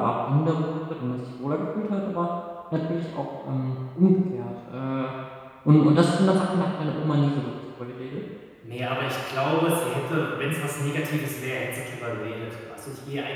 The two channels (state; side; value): identical; both; correlation 1.00